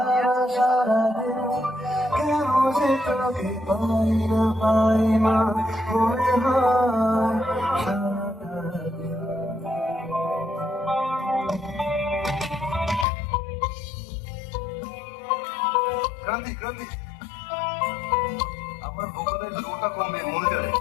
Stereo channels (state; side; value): drops out; right; at 13.1 s